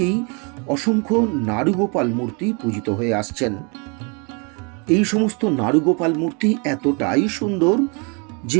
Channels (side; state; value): left; quieter; 33.5 dB